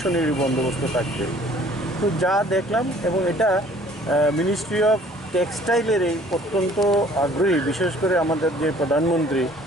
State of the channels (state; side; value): normal; both; correlation 0.55